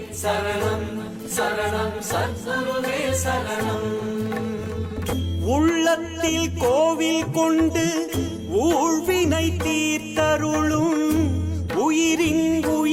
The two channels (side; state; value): both; identical; correlation 1.00